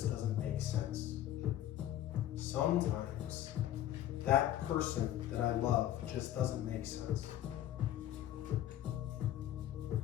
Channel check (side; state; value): right; quieter; 12.3 dB